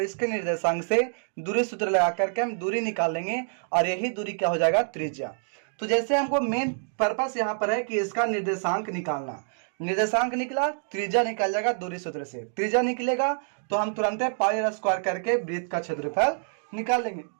इसके निर्देशांक से दूरी सूत्र लगा करके हम दूरी निकालेंगे और यही दूरी क्या हो जाएगा, त्रिज्या। तो जैसे हमको मेन पर्पस यहाँ पर है कि इसका निर्देशांक निकालना, निर्देशांक निकला, त्रिज्या निकल जाएगा दूरी सूत्र से। त्रिज्या निकलेगा तो हम तुरंत पाई स्क्वायर करके वृत्त का क्षेत्रफल निकाल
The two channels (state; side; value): silent; left; digital silence